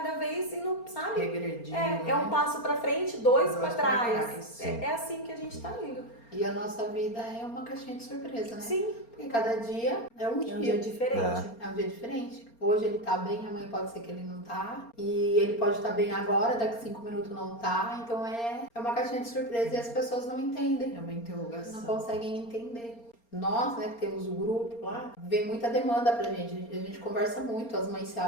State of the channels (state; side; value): late; right; 4.3 ms